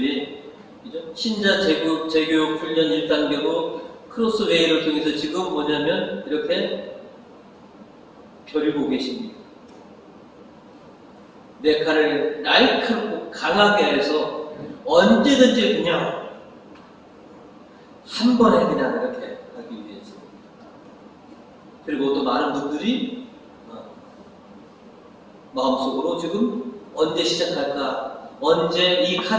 그죠? 신자 재교육 훈련 1단계로 크로스웨이를 통해서 지금 뭐냐면 이렇게 벼리고 계십니다. 내 칼을 날카롭고 강하게 해서 언제든지 그냥 한 번에 그냥 이렇게 하기 위해서. 그리고 또 많은 분들이 마음속으로 지금 언제 시작할까, 언제 이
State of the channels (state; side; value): identical; both; correlation 1.00